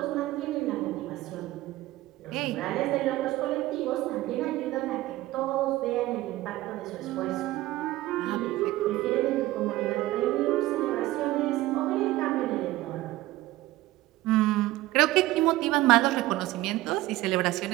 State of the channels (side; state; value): left; quieter; 17.0 dB